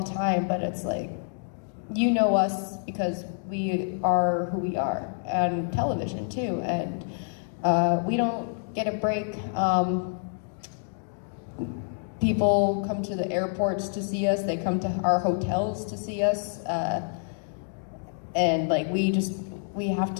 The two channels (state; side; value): silent; right; digital silence